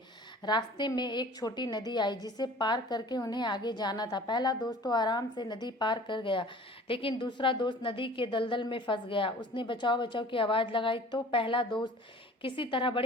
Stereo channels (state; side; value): normal; both; correlation 0.46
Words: रास्ते में एक छोटी नदी आई जिसे पार करके उन्हें आगे जाना था। पहला दोस्त तो आराम से नदी पार कर गया, लेकिन दूसरा दोस्त नदी के दलदल में फंस गया। उसने बचाओ बचाओ की आवाज़ लगाई तो पहला दोस्त किसी तरह